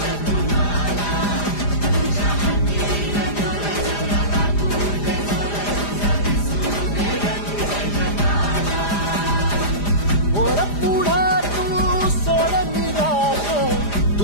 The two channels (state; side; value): late; right; 4.9 ms